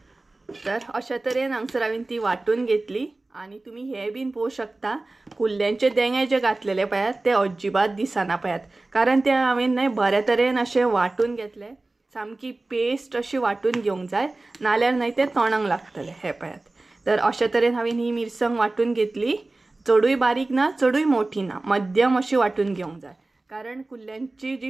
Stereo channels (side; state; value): left; quieter; 3.1 dB